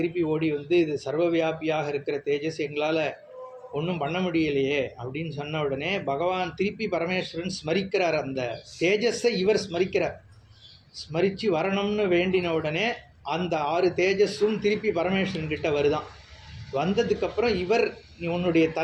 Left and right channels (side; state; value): both; identical; correlation 1.00